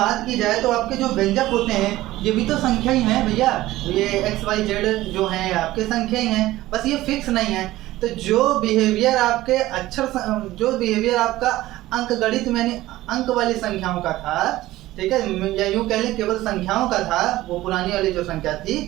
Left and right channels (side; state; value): left; quieter; 16.5 dB